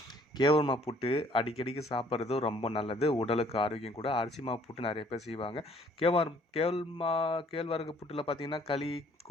கேவுருமா புட்டு அடிக்கடிக்கு சாப்பிட்றது ரொம்ப நல்லது. உடலுக்கு ஆரோக்கியம் கூட. அரிசி மாவு புட்டு நெறைய பேர் செய்வாங்க. கேழ்வரகு புட்டுல பார்த்தீங்கன்னா, களி,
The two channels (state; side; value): normal; both; correlation 0.60